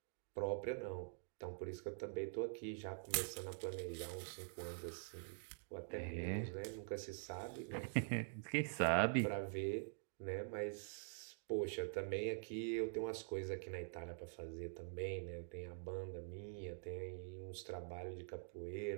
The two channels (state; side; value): silent; left; digital silence